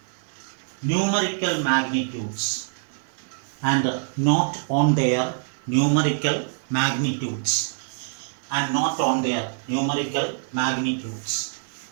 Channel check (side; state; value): left; silent; digital silence